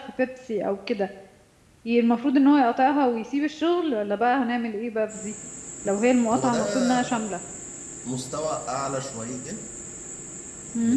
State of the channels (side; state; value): both; identical; correlation 1.00